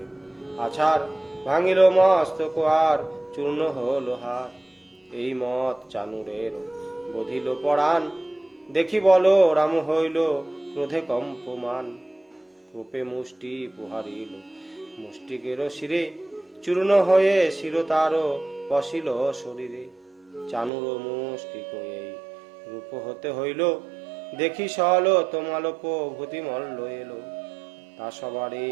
আছার, ভাঙিল মস্তক আর চূর্ণ হল হার। এই মত চানুরের বধিল পরাণ, দেখি বল রাম হইল ক্রোধে কম্পমান। রূপে মুষ্টি পুহারিল মুষ্টিকের শিরে, চূর্ণ হয়ে শির তার পশিল শরীরে। চানুর মুষ্টিক এই রূপ হতে হইল, দেখি সল তোমালোপ ভূতি মল্ল এলো। তা সবারে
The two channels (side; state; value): left; drops out; at 20.7 s